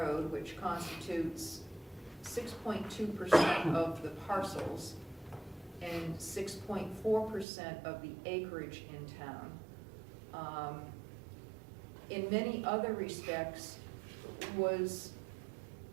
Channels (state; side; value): drops out; left; at 7.5 s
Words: which constitutes 6.2% of the parcels and 6.4% of the acreage in town, in many other respects was